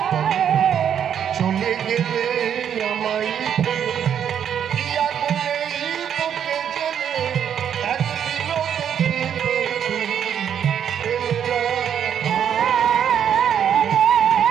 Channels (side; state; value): left; quieter; 8.8 dB